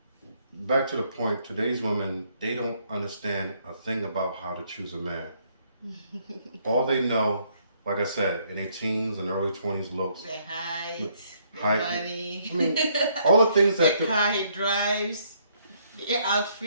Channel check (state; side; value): inverted; both; correlation -0.69